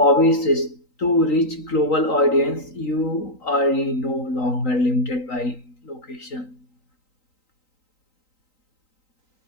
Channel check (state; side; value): late; right; 3.9 ms